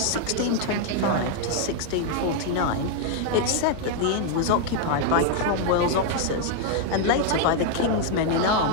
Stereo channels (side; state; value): both; different; correlation 0.00